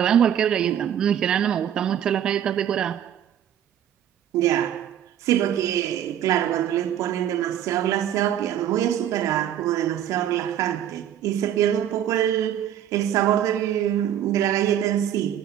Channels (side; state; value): left; quieter; 10.4 dB